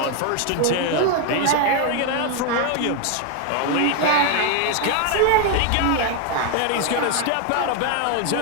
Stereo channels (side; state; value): both; different; correlation 0.01